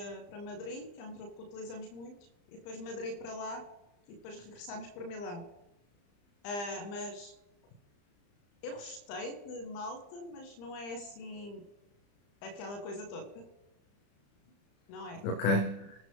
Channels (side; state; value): right; late; 35 ms